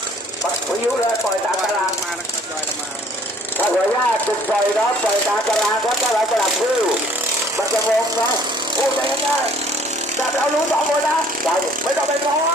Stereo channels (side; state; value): both; normal; correlation 0.57